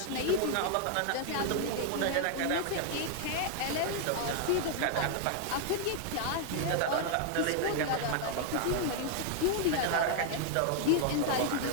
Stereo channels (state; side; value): different; both; correlation 0.00